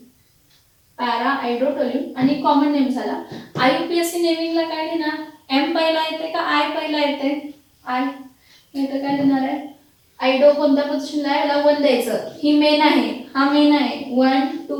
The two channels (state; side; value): identical; both; correlation 1.00